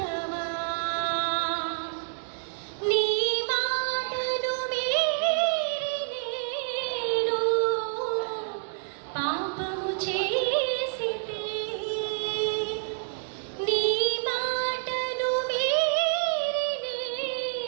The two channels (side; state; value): left; silent; 59 dB below the other